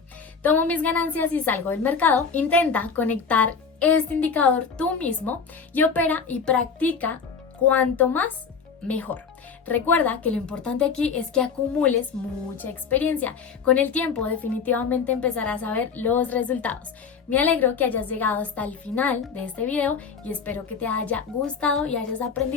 Tomo mis ganancias y salgo del mercado. Intenta conectar este indicador tú mismo y opera y practica cuanto más mejor. Recuerda que lo importante aquí es que acumules mucha experiencia. Con el tiempo definitivamente empezarás a ver los resultados. Me alegro que hayas llegado hasta el final de este video y espero que te haya gustado y hayas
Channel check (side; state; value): right; quieter; 5.7 dB